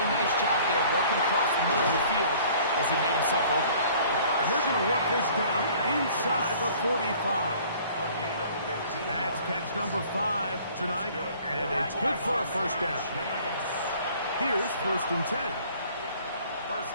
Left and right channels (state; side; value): inverted; both; correlation -0.53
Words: nice job there working across the middle of the field as he made himself open. And they're going to work this down inside the 45. That's catch number 5 tonight, and it's good for a first down. Here's first and 10. First